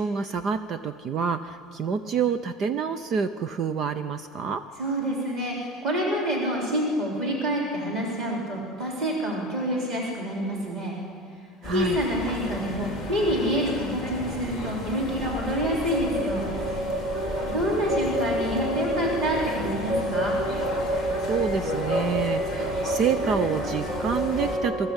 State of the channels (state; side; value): normal; both; correlation 0.38